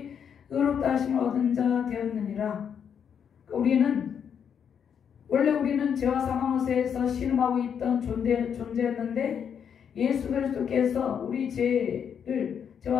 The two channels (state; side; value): quieter; right; 7.8 dB